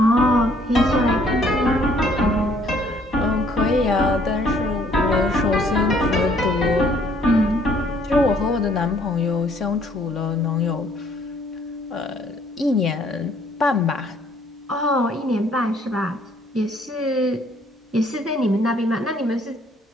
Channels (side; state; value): both; normal; correlation 0.62